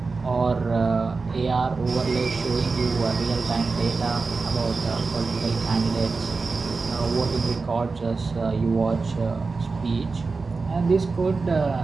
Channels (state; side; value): quieter; left; 4.2 dB